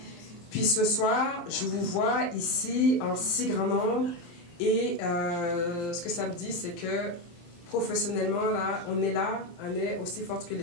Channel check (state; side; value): late; right; 23 ms